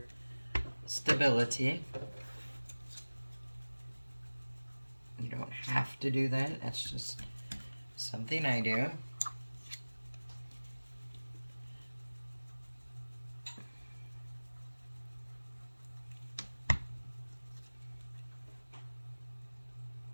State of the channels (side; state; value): both; inverted; correlation -1.00